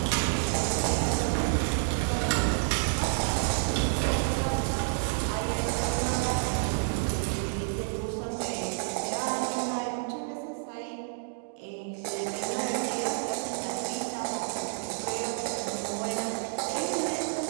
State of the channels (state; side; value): silent; left; digital silence